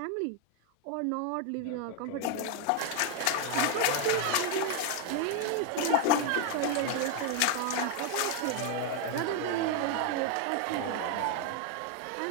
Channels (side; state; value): both; different; correlation 0.01